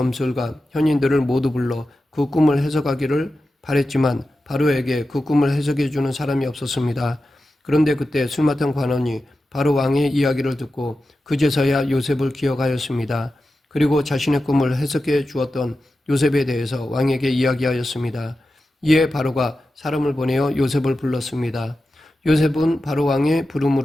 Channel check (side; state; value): both; normal; correlation 0.92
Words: 현인들을 모두 불러 그 꿈을 해석하기를 바랬지만 바로에게 그 꿈을 해석해 주는 사람이 없었습니다. 그런데 그때 술 맡은 관원이 바로 왕의 이야기를 듣고 그제서야 요셉을 기억하였습니다. 그리고 자신의 꿈을 해석해 주었던 요셉에 대해서 왕에게 이야기하였습니다. 이에 바로가 사람을 보내어 요셉을 불렀습니다. 요셉은 바로 왕의